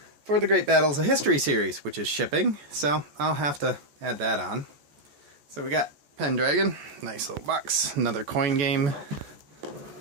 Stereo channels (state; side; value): late; left; 14 ms